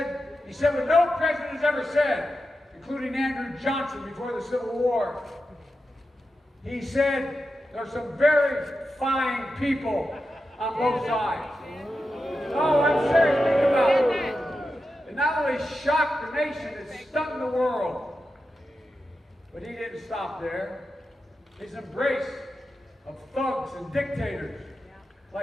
He said what no president has ever said, including Andrew Johnson before the Civil War. He said, "There are some very fine people on both sides." Oh, I'm serious. Think about it. It not only shocked the nation, it stunned the world. But he didn't stop there. His embrace of thugs and dictators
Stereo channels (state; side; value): normal; both; correlation 0.90